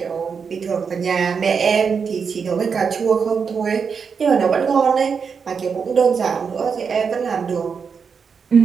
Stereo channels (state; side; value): quieter; left; 6.0 dB